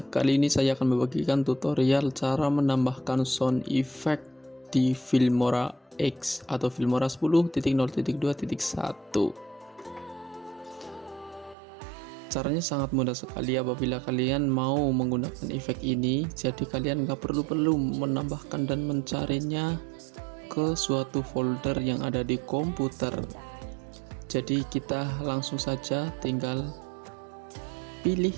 Kali ini saya akan membagikan tutorial cara menambahkan sound effect di Filmora X atau Filmora 10.0.2.1. Caranya sangat mudah sekali apabila kalian mau menggunakan efek ini. Jadi kalian nggak perlu menambahkan dan mencarinya ke suatu folder yang ada di komputer. Jadi kita langsung saja tinggal pilih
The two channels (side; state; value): left; drops out; at 11.6 s